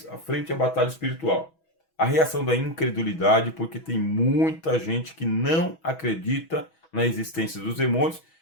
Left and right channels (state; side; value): late; right; 6.2 ms